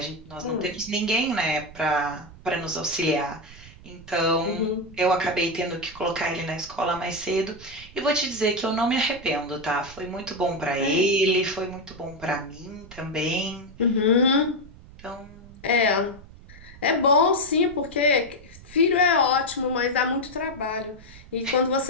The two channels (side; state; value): right; noise; rumble, 19 dB below the sound